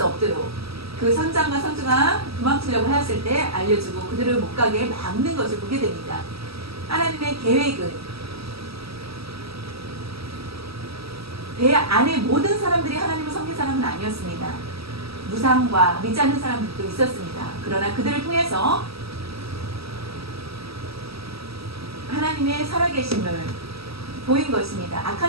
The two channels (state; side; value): late; left; 0.76 ms